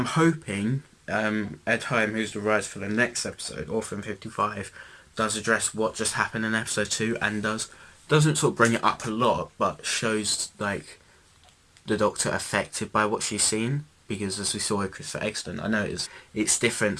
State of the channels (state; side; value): identical; both; correlation 1.00